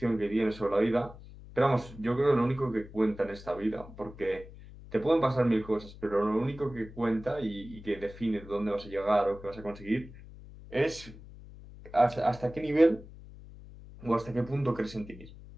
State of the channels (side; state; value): left; noise; hum, 17 dB below the sound